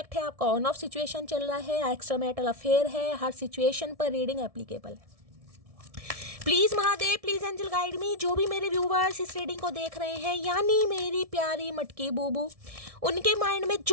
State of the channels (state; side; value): late; left; 1.7 ms